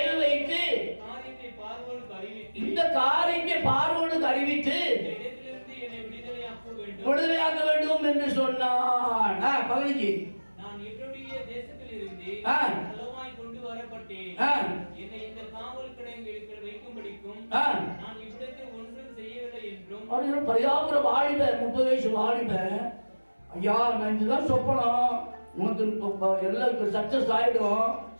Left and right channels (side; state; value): both; inverted; correlation -1.00